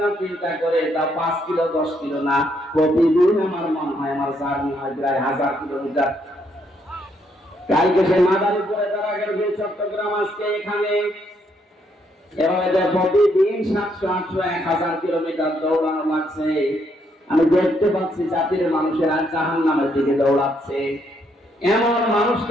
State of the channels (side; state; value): both; normal; correlation 0.73